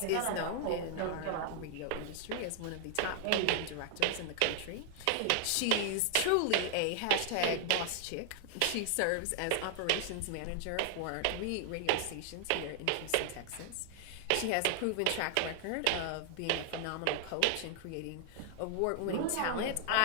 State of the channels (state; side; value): different; both; correlation 0.00